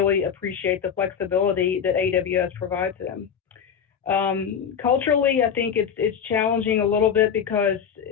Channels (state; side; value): quieter; right; 7.6 dB